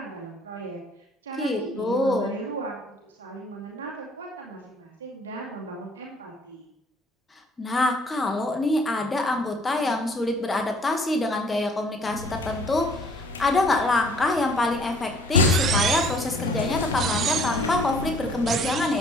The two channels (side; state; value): both; normal; correlation 0.56